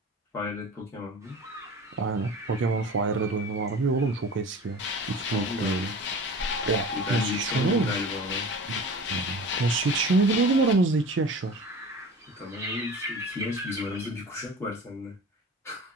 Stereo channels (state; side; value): normal; both; correlation 0.38